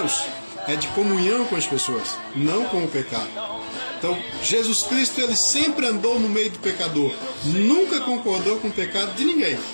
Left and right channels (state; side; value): inverted; both; correlation -1.00